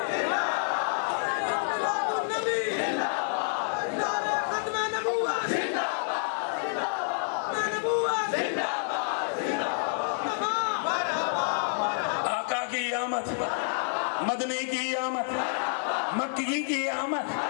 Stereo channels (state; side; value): silent; right; digital silence